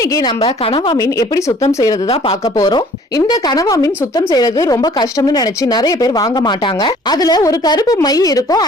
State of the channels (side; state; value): both; normal; correlation 0.54